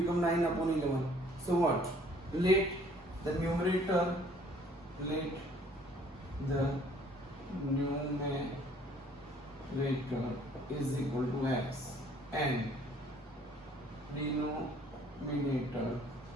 9 upon 11. So what? Let the numerator is equal to x and denominator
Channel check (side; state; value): both; normal; correlation 0.58